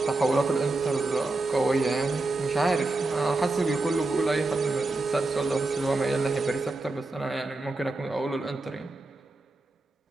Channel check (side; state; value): left; quieter; 3.1 dB